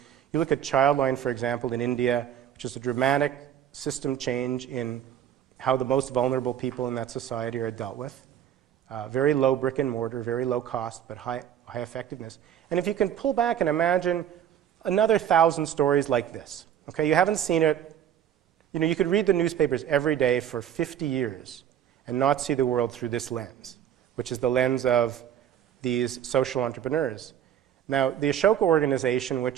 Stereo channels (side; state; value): left; quieter; 9.9 dB